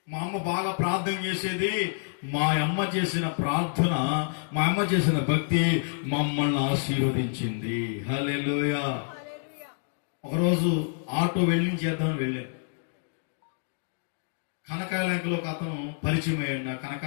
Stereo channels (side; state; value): right; silent; digital silence